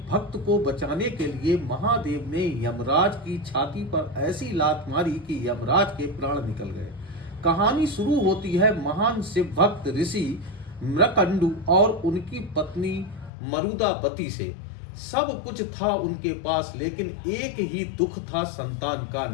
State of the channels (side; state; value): right; drops out; at 13.3 s